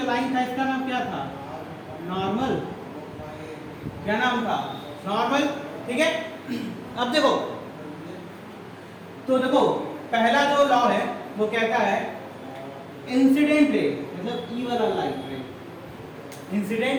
लाइन था इसका नाम क्या था? नॉर्मल। क्या नाम था? नॉर्मल, ठीक है। अब देखो, तो देखो पहला जो लॉ है वो कहता है इंसिडेंट रे मतलब ई वाला लाइट रे,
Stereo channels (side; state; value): both; identical; correlation 1.00